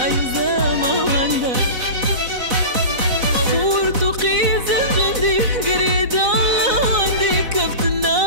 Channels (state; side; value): late; left; 4.0 ms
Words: زما وندا خورت وقيز جندي قريد الله وندي كفت